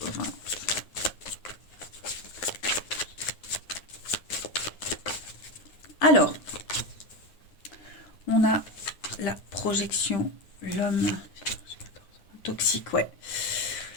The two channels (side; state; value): right; late; 9.6 ms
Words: Alors, on a la projection, l'homme toxique, ouais.